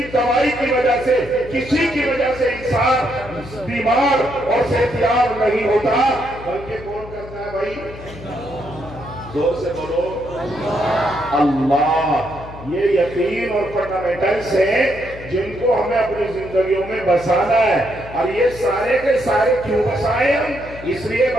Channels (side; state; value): left; noise; hum, 15 dB below the sound